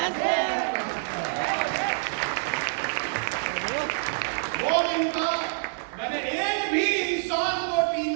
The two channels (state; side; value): silent; left; 58 dB below the other